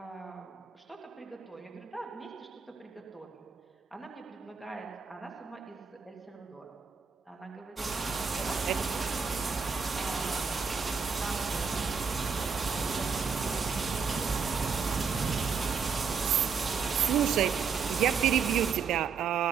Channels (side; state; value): left; quieter; 5.9 dB